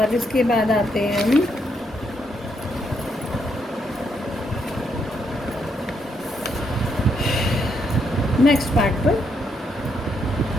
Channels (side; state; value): both; normal; correlation 0.76